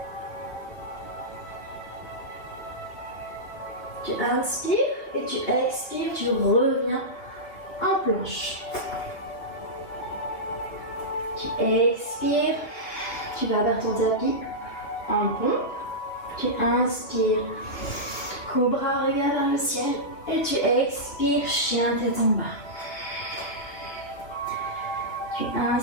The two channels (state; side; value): late; right; 2.9 ms